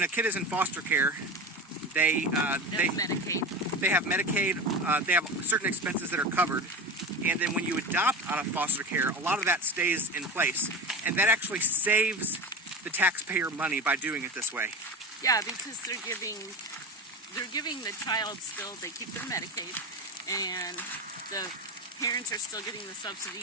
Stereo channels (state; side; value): normal; both; correlation 0.26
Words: a kid is in foster care, they have Medicaid. They have Medicaid. They have certain expenses that are covered, and then when you adopt out of foster care, a lot of that stays in place, and that actually saves the taxpayer money by doing it this way. Yeah, because they're giving the child still. They keep their Medicaid, and the parents are still getting the subsidy